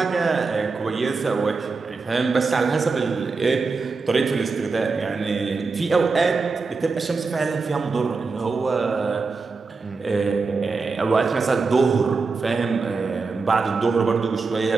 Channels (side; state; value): left; quieter; 4.4 dB